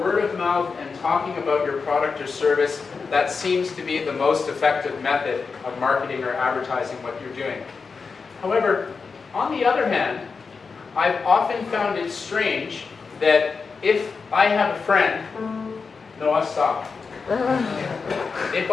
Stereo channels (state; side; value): quieter; right; 5.0 dB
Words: of mouth and talking about your product or service, that seems to be the most effective method of marketing or advertising what you're doing. However, on the other hand, I've often found it strange that if I have a friend, Noah, stop. If